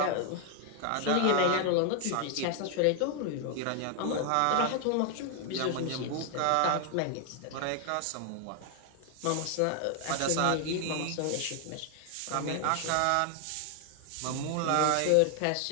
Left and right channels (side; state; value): both; different; correlation 0.00